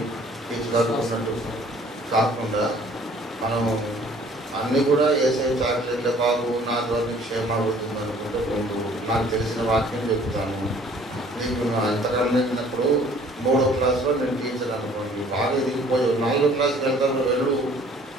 తీసుకున్నట్టు కాకుండా మనము అన్నీ కూడా వేసే చాక్లెట్లే బాబు నా ద్వారా క్షేమ అవుతుంది అనుకుంటే ముందు నాకు తెలిసిన వాక్యం చెప్తాను. నీకు అంతకన్నా వెళ్ళినప్పుడు 3వ క్లాస్లో నేను టీచర్ అనుకోండి, బాగా ఎదిగిపోయి 4వ క్లాస్కి వెళ్తాను, వెళ్ళు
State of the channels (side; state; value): both; normal; correlation 0.55